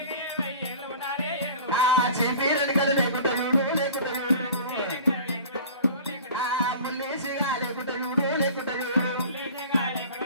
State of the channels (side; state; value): both; inverted; correlation -0.41